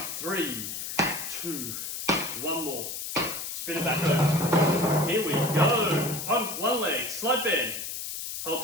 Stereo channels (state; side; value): noise; left; hiss, 6 dB below the sound